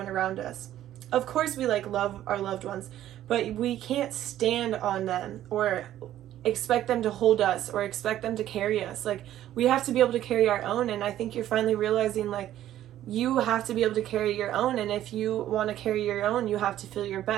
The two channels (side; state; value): left; quieter; 12.6 dB